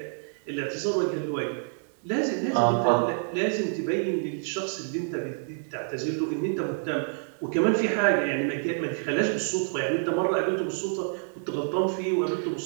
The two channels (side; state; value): left; silent; 60 dB below the other